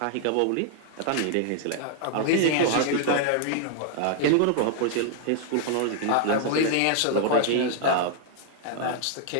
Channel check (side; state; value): both; different; correlation 0.00